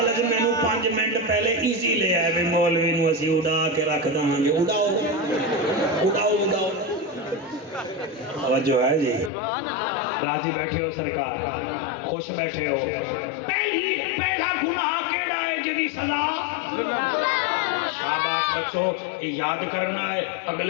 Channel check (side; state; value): right; drops out; at 9.3 s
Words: ہے میں نو 5 منٹ پہلے ایزی لے آئے بھی مولوی نو اسی اڑا کے رکھ داں گے اڑاؤ اڑاؤ اڑاؤ توجہ ہے جی راضی بیٹھے ہو سرکار خوش بیٹھے ہو پہلا گناہ کیڑا ہے جدی سزا شاباش بچو یہ یاد کرنا ہے